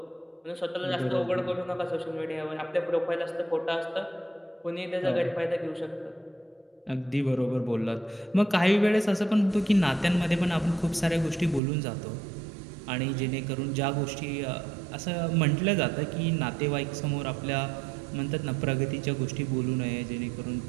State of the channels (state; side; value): drops out; left; at 11.6 s